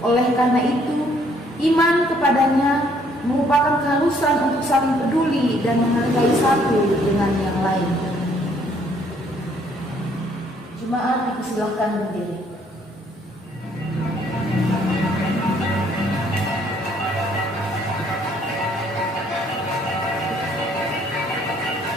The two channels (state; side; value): normal; both; correlation 0.65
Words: Oleh karena itu, iman kepadanya merupakan keharusan untuk saling peduli dan menghargai satu dengan yang lain. Jemaat dipersilakan berdiri.